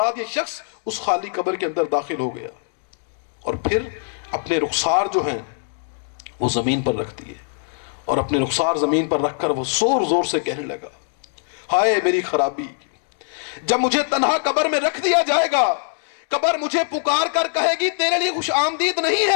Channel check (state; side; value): silent; right; 64 dB below the other